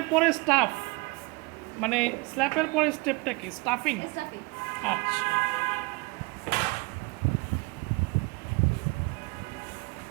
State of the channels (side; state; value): left; quieter; 26.9 dB